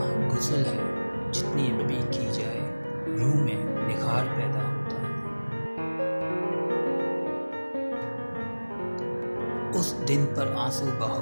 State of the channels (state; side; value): inverted; both; correlation -1.00